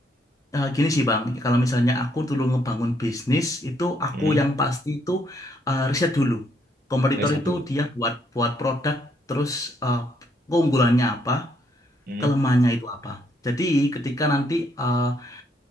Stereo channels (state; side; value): normal; both; correlation 0.71